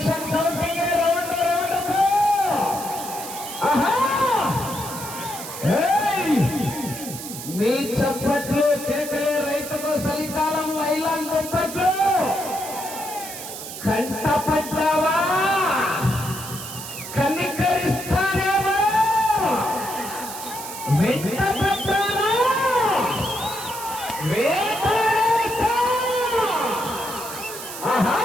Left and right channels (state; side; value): noise; right; hiss, 10 dB below the sound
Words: కౌంటింగ్ రౌండ్ రౌండ్కు. మీ చప్పట్లు కేకలే రైతుకు చలికాలం లైలాన్ దుప్పట్లు. కంటపడ్డావా? కనికరిస్తానేమో. వెంటపడ్డారా? వేటాడేస్తా.